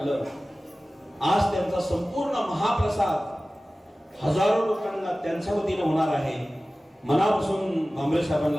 आज त्यांचा संपूर्ण महाप्रसाद हजारो लोकांना त्यांच्या वतीने होणार आहे. मनापासून भांबरे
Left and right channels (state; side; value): normal; both; correlation 0.97